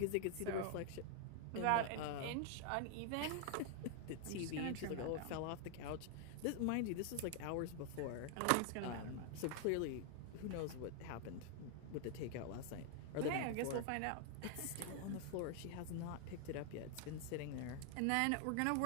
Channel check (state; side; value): different; both; correlation 0.00